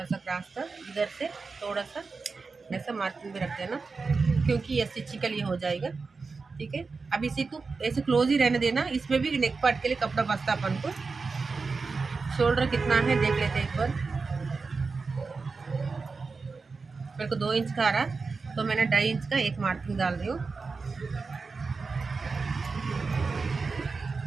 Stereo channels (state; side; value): quieter; left; 4.4 dB